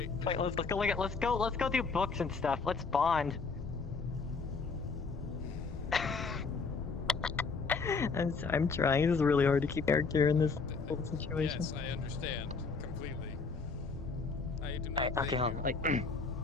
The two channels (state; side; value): quieter; right; 4.6 dB